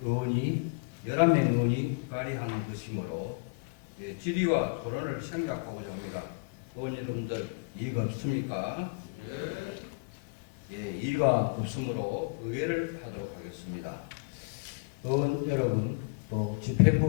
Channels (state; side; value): quieter; right; 31.9 dB